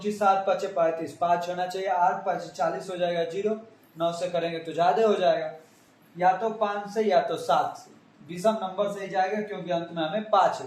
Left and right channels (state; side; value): identical; both; correlation 1.00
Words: 7 5 35, 5 होना चाहिए, 8 5 40 हो जाएगा 0, 9 से करेंगे तो ज्यादा हो जाएगा। या तो 5 से या तो 7 से, विषम नंबर से ही जाएगा, क्योंकि अंत में हमें 5